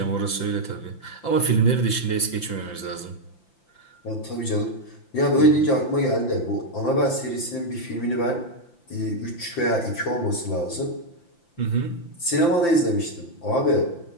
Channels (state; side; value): late; right; 5.9 ms